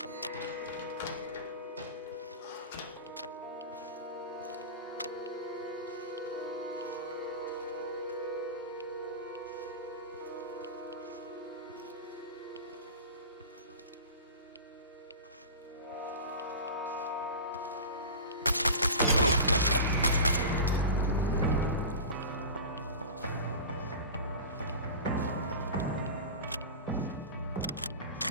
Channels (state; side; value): inverted; both; correlation -0.31